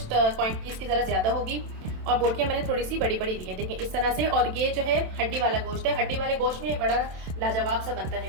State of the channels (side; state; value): left; late; 27 ms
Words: क्वांटिटी इसकी ज़रा ज़्यादा होगी। और बोटियाँ मैंने थोड़ी सी बड़ी बड़ी ली हैं, देखें इस तरह से। और ये जो है हड्डी वाला गोश्त है, हड्डी वाले गोश्त में बड़ा लाजवाब सा बनता